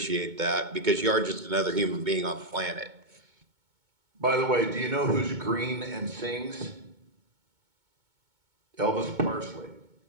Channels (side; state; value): left; late; 2.2 ms